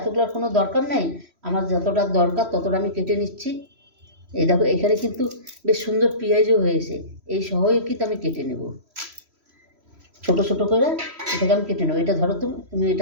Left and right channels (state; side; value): late; left; 3.0 ms